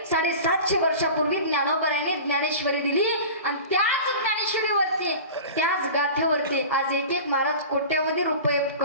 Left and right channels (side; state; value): both; inverted; correlation -0.36